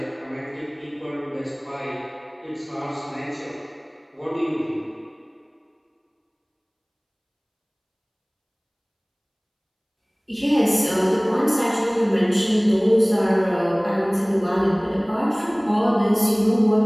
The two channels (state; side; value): identical; both; correlation 1.00